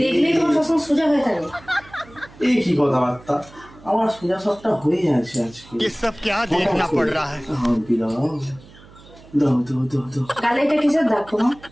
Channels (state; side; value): noise; right; hum, 23 dB below the sound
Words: দেখলেই তোমার সবসময় সোজা হয়ে থাকে। এই কি কথাবার্তা, আমার সোজা সাপটা হয়ে আছে আজকে। ये सब क्या देखना पड़ रहा है? দাও দাও দাও দাও। গালে এটা কিসের দাগ তোমার?